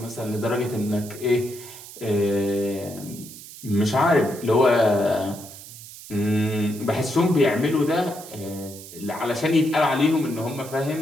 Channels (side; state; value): right; noise; hiss, 15 dB below the sound